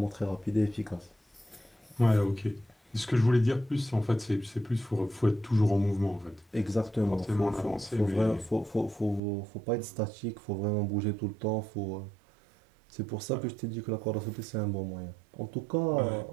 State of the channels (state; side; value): drops out; left; at 9.2 s